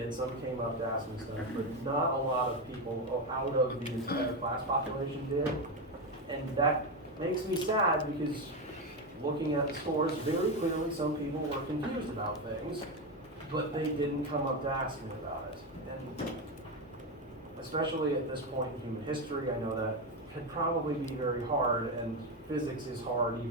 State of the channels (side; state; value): both; normal; correlation 0.12